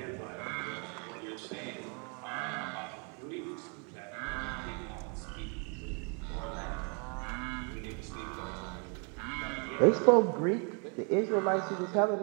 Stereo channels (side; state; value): left; quieter; 36.6 dB